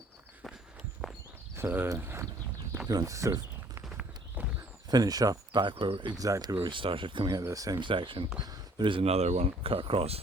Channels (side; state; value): both; normal; correlation 0.58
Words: So if you want to sort of finish up back where exactly where we started, coming out of the same section, there is another one cut across